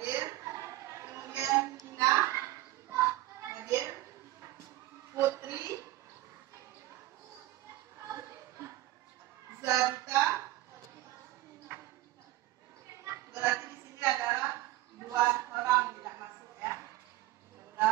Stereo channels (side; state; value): left; quieter; 16.4 dB